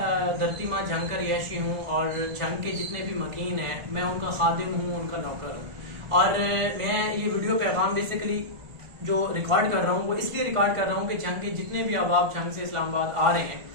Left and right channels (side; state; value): left; late; 1.5 ms